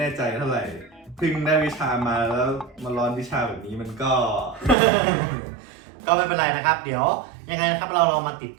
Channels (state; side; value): drops out; left; at 4.8 s